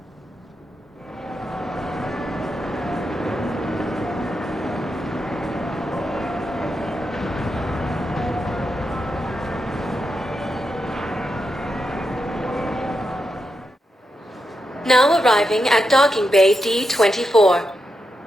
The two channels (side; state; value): both; normal; correlation 0.86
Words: Now arriving at docking bay D-24.